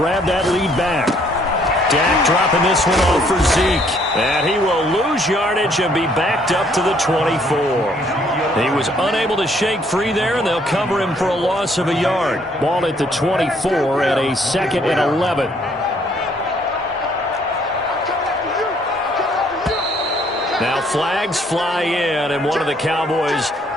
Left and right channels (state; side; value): normal; both; correlation 0.65